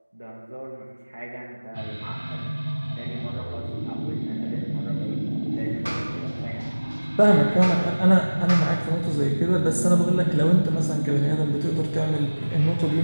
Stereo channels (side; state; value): both; inverted; correlation -1.00